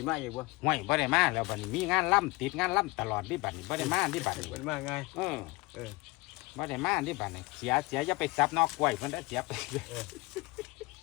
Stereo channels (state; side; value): quieter; right; 23.5 dB